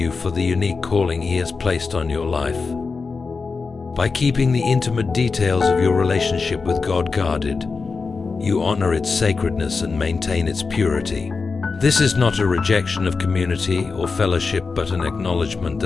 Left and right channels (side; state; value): right; quieter; 4.6 dB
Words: for the unique calling He has placed on your life. By keeping the intimate details of your relationship with God guarded, you honor its sacredness and maintain its purity. This is not a rejection of community or fellowship, but an acknowledgement